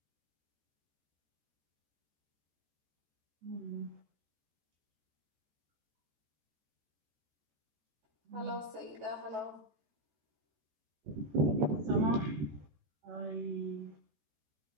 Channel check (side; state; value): left; late; 14 ms